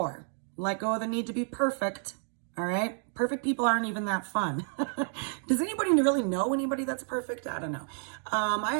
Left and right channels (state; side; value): silent; left; 58 dB below the other